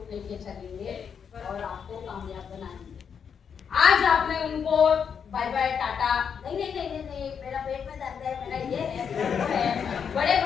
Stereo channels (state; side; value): quieter; right; 7.1 dB